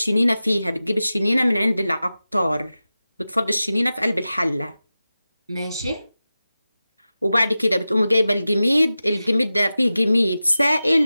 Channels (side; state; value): both; inverted; correlation -0.95